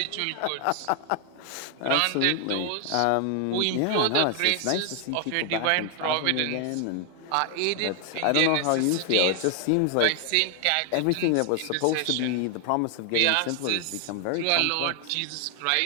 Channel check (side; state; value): both; different; correlation 0.00